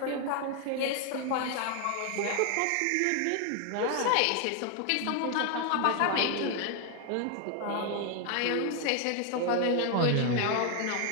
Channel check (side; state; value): both; different; correlation 0.01